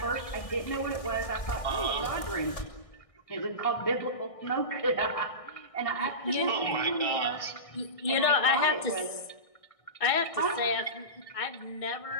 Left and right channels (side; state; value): right; late; 1.6 ms